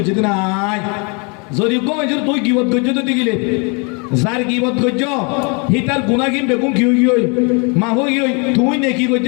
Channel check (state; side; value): quieter; right; 33.0 dB